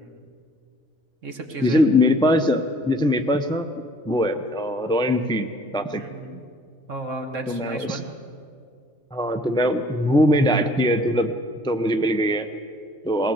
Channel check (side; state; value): both; normal; correlation 0.57